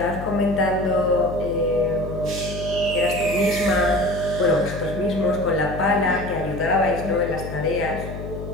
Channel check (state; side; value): noise; left; hum, 8 dB below the sound